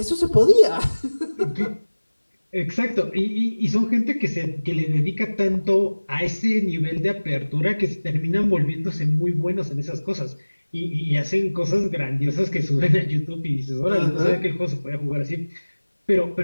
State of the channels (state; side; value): inverted; both; correlation -1.00